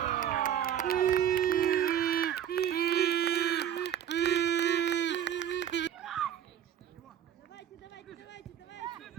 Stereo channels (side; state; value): left; quieter; 9.8 dB